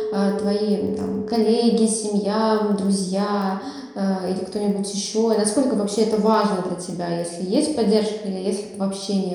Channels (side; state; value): both; identical; correlation 1.00